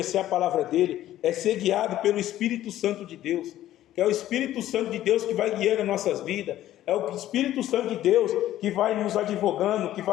a palavra dele, é ser guiado pelo Espírito Santo de Deus, que é o Espírito Santo de Deus que vai guiando as nossas vidas, é o Espírito Santo de Deus que vai nos advogando, que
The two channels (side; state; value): right; quieter; 13.3 dB